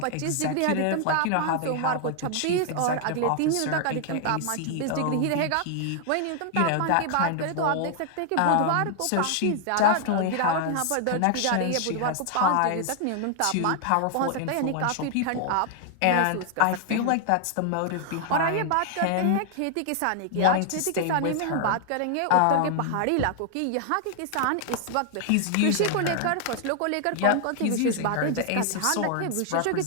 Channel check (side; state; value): both; different; correlation 0.00